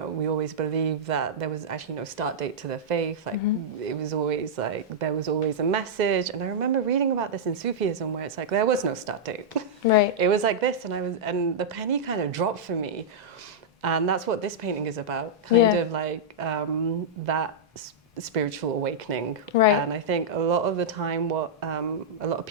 we always believed that there was actually no start date to the faith. Like it was always like, there was always a message. And I remember reading about this in Sufism, where it's like, there was no start date. Right. It was like this, and the penny kind of dropped for me. And that's what this painting is about, kind of like that spiritual awakening. Right. And I think a lot of the time what a lot of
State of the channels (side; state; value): both; normal; correlation -0.09